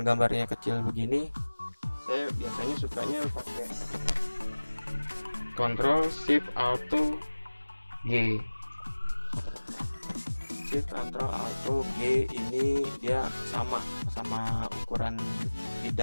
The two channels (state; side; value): inverted; both; correlation -1.00